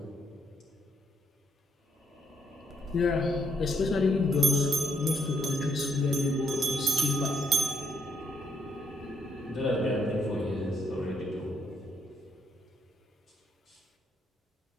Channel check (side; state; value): both; normal; correlation 0.72